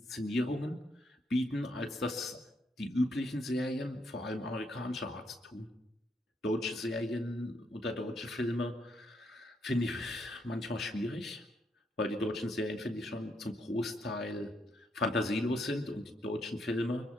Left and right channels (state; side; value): normal; both; correlation 0.76